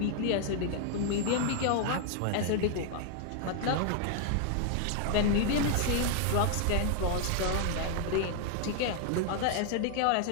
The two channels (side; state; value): both; different; correlation 0.00